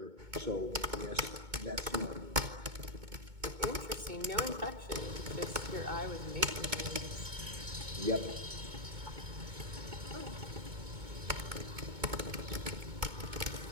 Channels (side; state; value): left; late; 2.2 ms